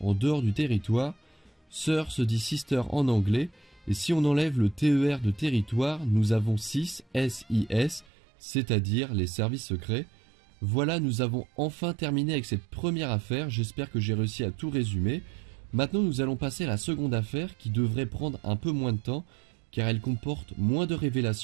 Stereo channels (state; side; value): drops out; left; at 8.1 s